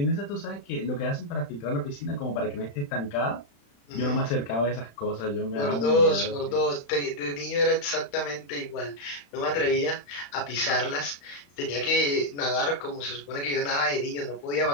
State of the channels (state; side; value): late; right; 35 ms